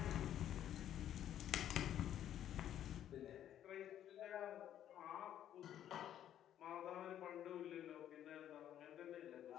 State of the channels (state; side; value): quieter; right; 10.9 dB